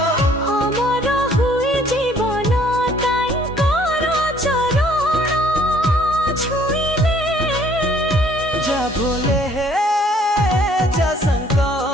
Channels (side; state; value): both; normal; correlation 0.60